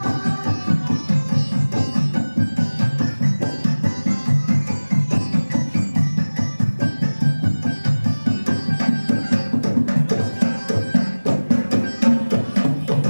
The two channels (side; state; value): both; inverted; correlation -1.00